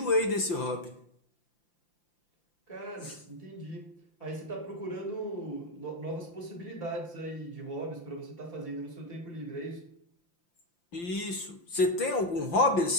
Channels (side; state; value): right; late; 5.8 ms